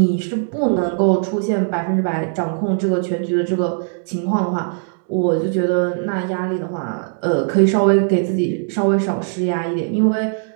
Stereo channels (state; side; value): silent; left; 66 dB below the other